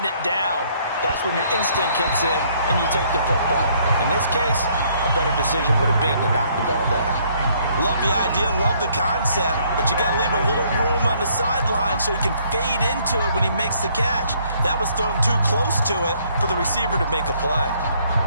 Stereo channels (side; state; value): both; inverted; correlation -0.65